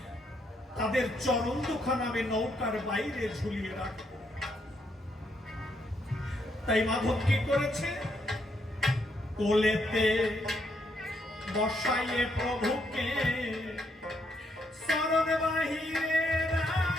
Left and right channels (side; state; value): both; normal; correlation 0.75